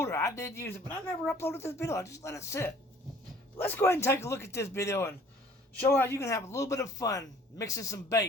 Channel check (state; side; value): normal; both; correlation 0.53